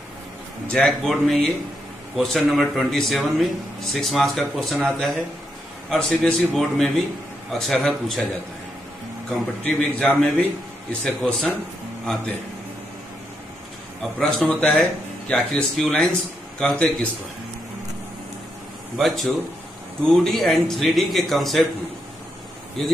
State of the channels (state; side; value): normal; both; correlation 0.81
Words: जैक बोर्ड में ये क्वेश्चन नंबर 27 में 6 मार्क्स का क्वेश्चन आता है और सीबीएसई बोर्ड में भी अक्सर पूछा जाता है। कॉम्पिटिटिव एग्जाम में भी इससे क्वेश्चन आते हैं। अब प्रश्न होता है कि आखिर स्क्यू लाइंस कहते किसको है। बच्चों, 2D एंड 3D के कंसेप्ट में